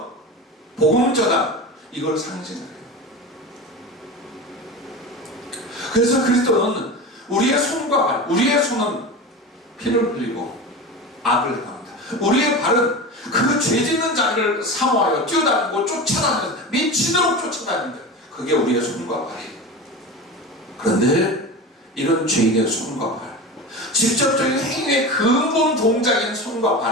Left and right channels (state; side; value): normal; both; correlation 0.28